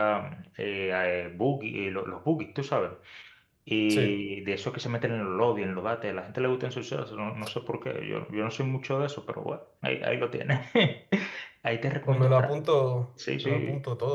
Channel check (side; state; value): both; identical; correlation 1.00